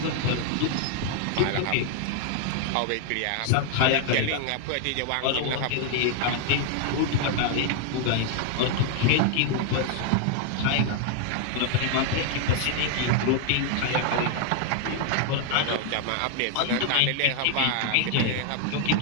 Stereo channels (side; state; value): both; different; correlation 0.00